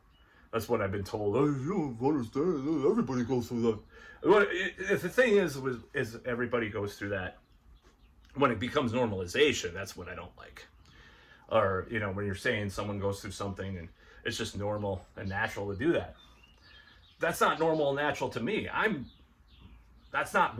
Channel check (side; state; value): both; identical; correlation 1.00